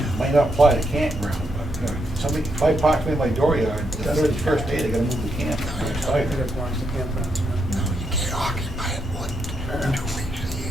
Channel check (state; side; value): normal; both; correlation 0.79